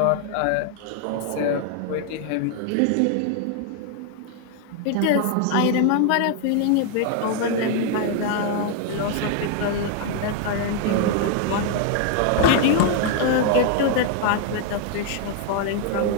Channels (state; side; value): different; both; correlation 0.00